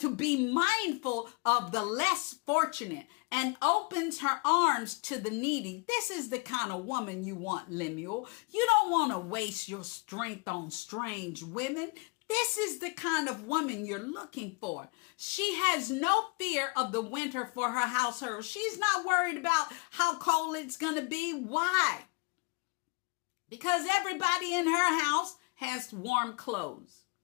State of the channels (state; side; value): quieter; right; 31.0 dB